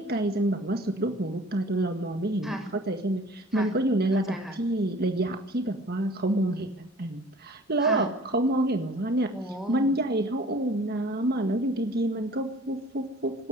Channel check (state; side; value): normal; both; correlation 0.49